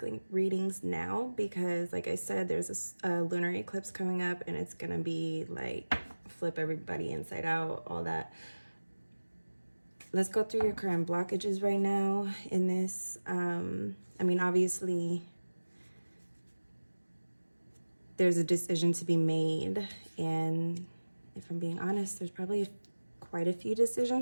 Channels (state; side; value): inverted; both; correlation -1.00